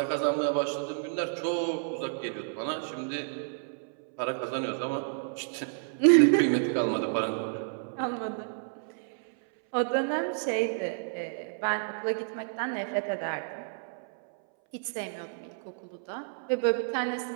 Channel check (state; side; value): silent; left; 58 dB below the other